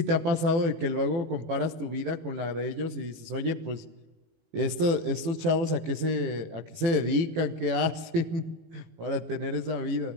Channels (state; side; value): late; left; 18 ms